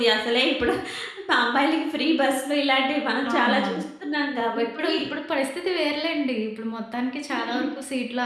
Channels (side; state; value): both; identical; correlation 1.00